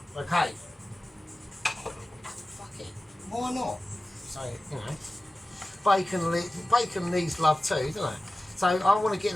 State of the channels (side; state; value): both; normal; correlation 0.96